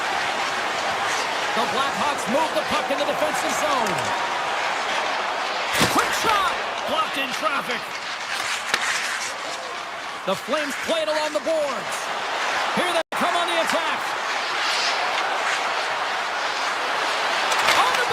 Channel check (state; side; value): identical; both; correlation 1.00